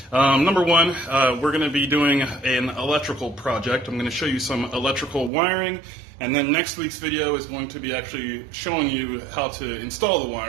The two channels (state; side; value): drops out; left; at 5.3 s